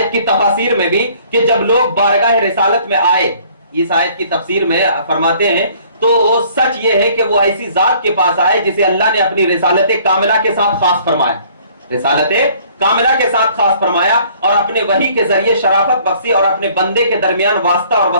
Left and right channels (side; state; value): both; inverted; correlation -0.57